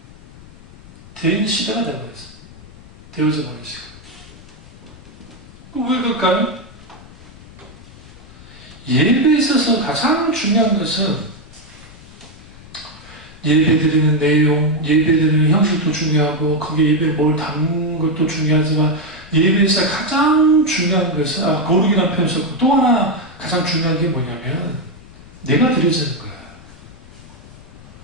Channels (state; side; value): noise; left; rumble, 20 dB below the sound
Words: 된 시대가 되어버렸어요. 되어져 버린 시대. 왜 그럴까요? 예배에 있어서 가장 중요한 것은 예배드리는 내용, 예배드리는 형식도 중요하고 거기에 예배에 뭘 담는 것도 중요하지만 예배에서 가장 중요한 것은 거룩이라는 표현 썼고 또 하나 가장 중요한 게 뭐냐면 내가 드려지는 거예요.